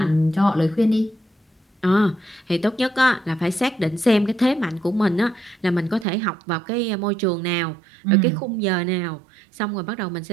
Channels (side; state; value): left; drops out; at 6.1 s